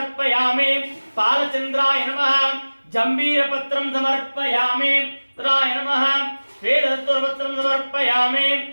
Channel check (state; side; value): inverted; both; correlation -1.00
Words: पालचंद्राय नमः जंबीरपत्रं समर्पयामि। राय नमः श्वेतपत्रं समर्पयामि।